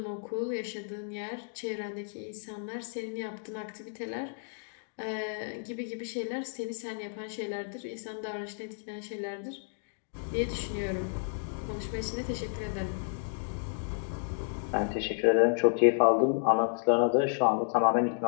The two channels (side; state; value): right; silent; digital silence